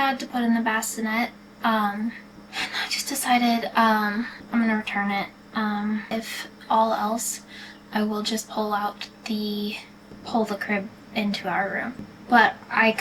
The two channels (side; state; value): both; identical; correlation 1.00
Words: to put in the bassinet, and I just decided, I'm gonna return it. If all else, I will just pull the crib into our room. But I